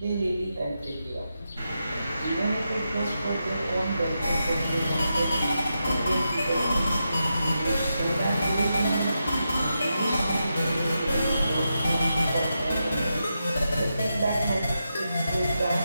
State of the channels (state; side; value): inverted; both; correlation -0.87